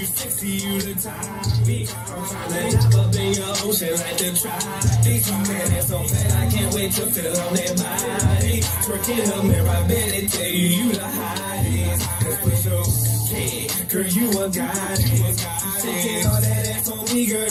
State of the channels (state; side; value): identical; both; correlation 1.00